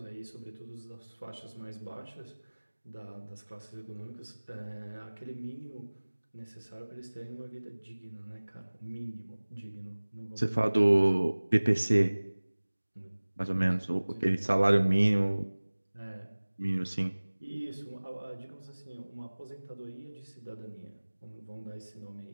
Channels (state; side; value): inverted; both; correlation -1.00